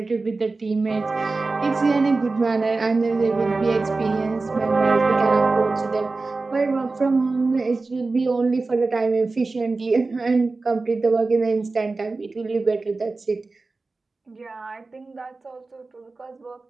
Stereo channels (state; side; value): quieter; left; 3.7 dB